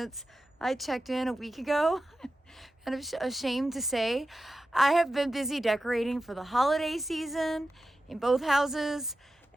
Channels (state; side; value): normal; both; correlation 0.92